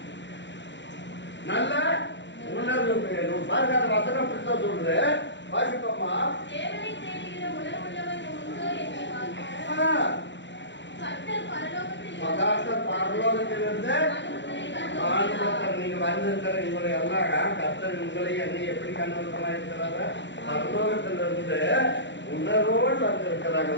நல்ல உணர்வு வேணும். பாருங்க, அந்த வசனம் அப்படித்தான் சொல்றது. வாசிப்போமா? கர்த்தர் பரலோகத்தில் பரலோகத்திலிருந்து மனுபுத்திரரை நீங்க வந்திருக்கிற உங்களை எல்லாம் கர்த்தர் உங்களை என்னை எப்படி கண்ணோட்டமா இருக்கிறாங்க? பரலோகத்திலிருந்து உணர்வோடு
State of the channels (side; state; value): right; late; 0.53 ms